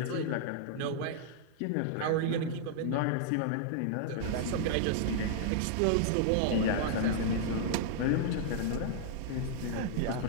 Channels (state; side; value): different; both; correlation -0.01